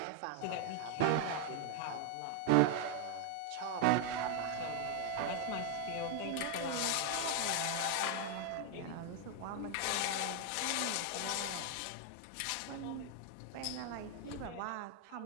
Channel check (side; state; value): both; different; correlation 0.01